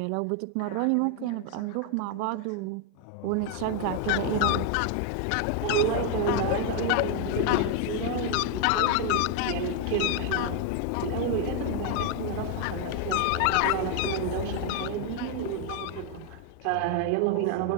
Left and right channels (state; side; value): different; both; correlation 0.00